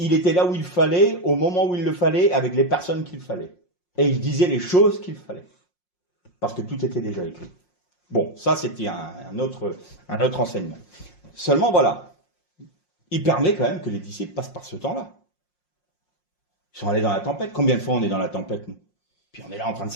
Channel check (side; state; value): right; late; 5.6 ms